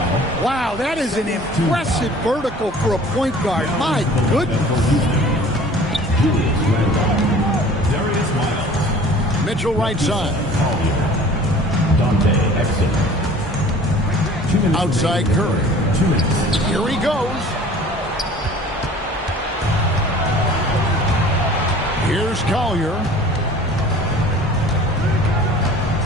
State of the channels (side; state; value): both; normal; correlation 0.47